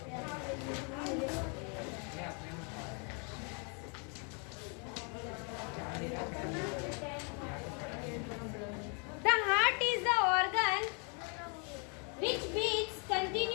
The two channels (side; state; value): right; quieter; 37.0 dB